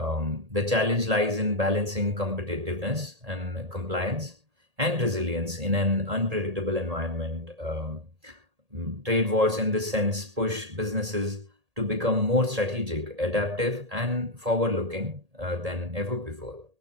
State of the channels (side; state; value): left; late; 1.8 ms